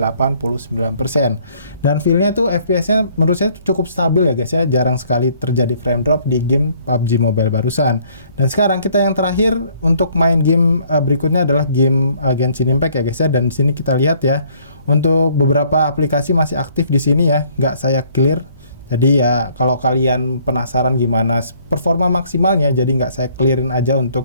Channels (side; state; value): both; inverted; correlation -0.61